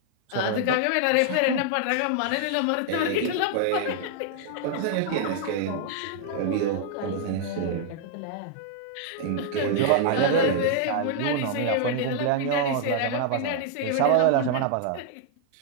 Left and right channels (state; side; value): different; both; correlation -0.01